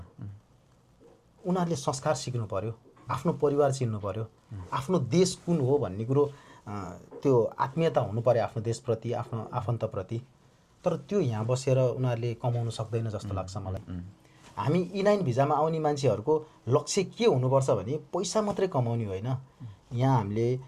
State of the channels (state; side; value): identical; both; correlation 1.00